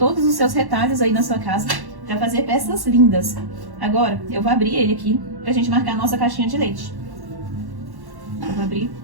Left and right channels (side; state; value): left; late; 1.1 ms